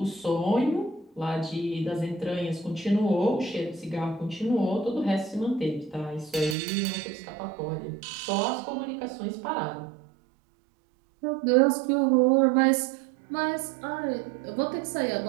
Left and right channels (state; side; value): drops out; left; at 6.6 s